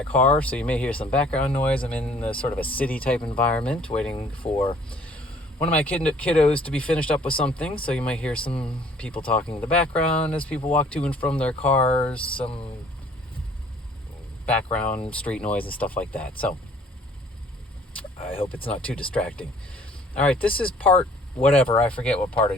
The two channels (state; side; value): normal; both; correlation 0.56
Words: car, so you may hear some background noise. I'm in the sort of a city-type environment, waiting for one of my kiddos to be finished up with something, so you might hear some people talking in the background as people walk to and from their cars, some background street noise and stuff like that. So I hope it's not too distracting. All right, this is part whatever. I forget what part